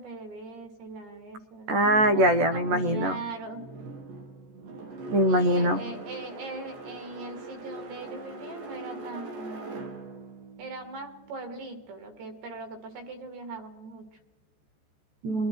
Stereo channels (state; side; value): late; left; 14 ms